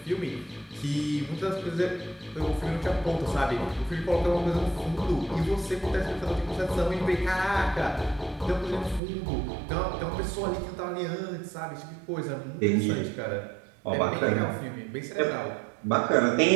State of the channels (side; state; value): left; drops out; at 9.0 s